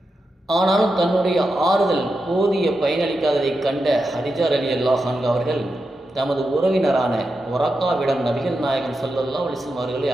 ஆனாலும் தன்னுடைய ஆறுதல் போதிய பயனளிக்காததைக் கண்ட ஹதீஜா ரலியல்லாஹு அன்ஹா அவர்கள் தமது உறவினரான ஒரக்காவிடம் நபிகள் நாயகம் ஸல்லல்லாஹு அலைஹி வஸல்லம் அவர்களை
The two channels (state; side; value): normal; both; correlation 0.88